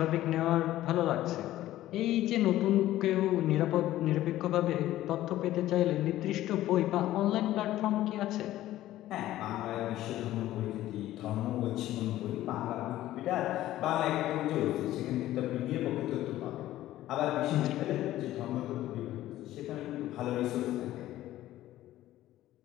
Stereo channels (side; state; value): right; quieter; 14.5 dB